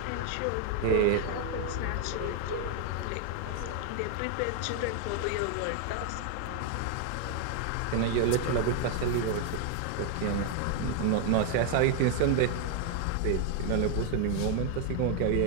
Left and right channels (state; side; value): different; both; correlation 0.00